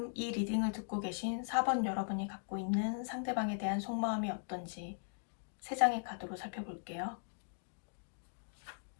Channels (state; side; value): silent; right; digital silence